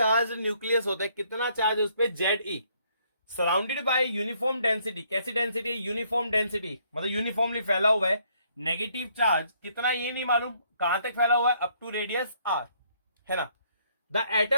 न्यूक्लियस होता है, कितना चार्ज है उस पर, Z E, surrounded by uniform density, कैसी डेंसिटी, यूनिफॉर्म डेंसिटी मतलब यूनिफॉर्मली फैला हुआ है, नेगेटिव चार्ज कितना ये नहीं मालूम, कहां तक फैला हुआ है, अप टू रेडियस आर, है ना। The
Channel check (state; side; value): inverted; both; correlation -0.67